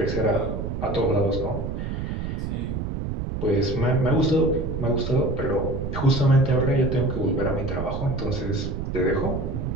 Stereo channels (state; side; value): noise; right; rumble, 4 dB below the sound